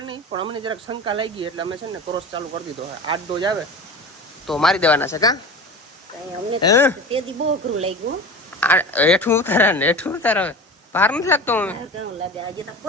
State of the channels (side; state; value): both; normal; correlation 0.33